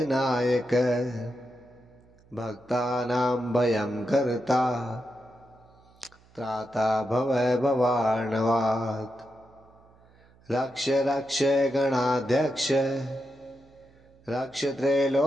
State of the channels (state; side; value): noise; right; hum, 29 dB below the sound